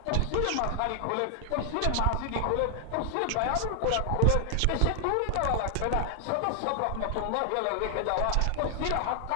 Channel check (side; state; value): both; different; correlation 0.00